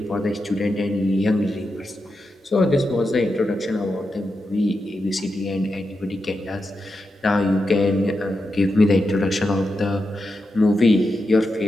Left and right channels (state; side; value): normal; both; correlation 0.88